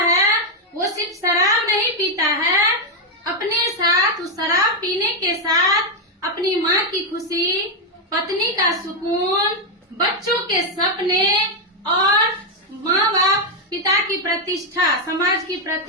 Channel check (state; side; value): normal; both; correlation 0.02